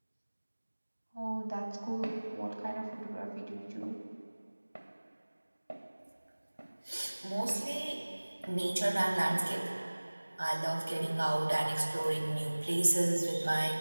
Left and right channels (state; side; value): inverted; both; correlation -1.00